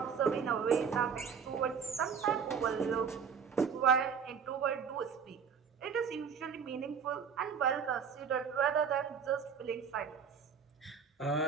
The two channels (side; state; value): left; quieter; 6.6 dB